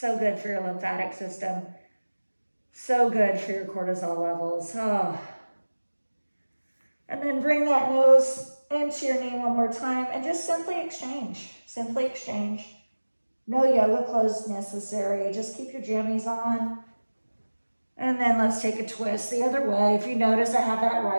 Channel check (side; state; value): both; inverted; correlation -1.00